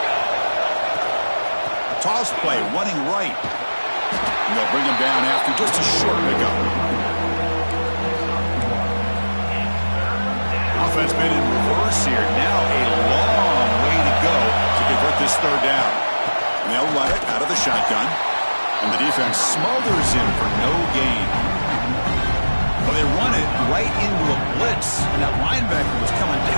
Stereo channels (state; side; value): inverted; both; correlation -1.00